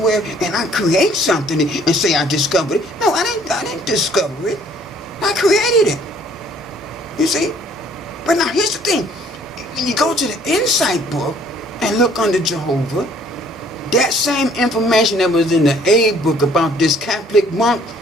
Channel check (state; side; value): normal; both; correlation 0.59